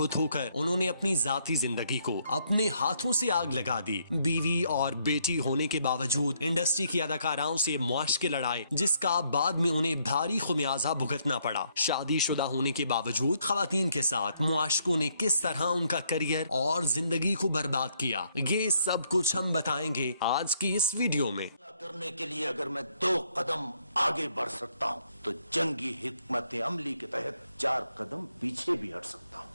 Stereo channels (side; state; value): both; inverted; correlation -0.71